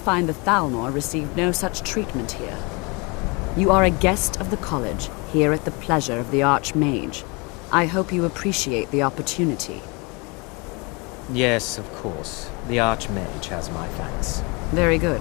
the Thalmor received no such treatment here. You are a guest of the college, here at the pleasure of the Archmage. I hope you appreciate the opportunity. Yes, of course. The Archmage has my thanks. Very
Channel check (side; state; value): right; quieter; 29.3 dB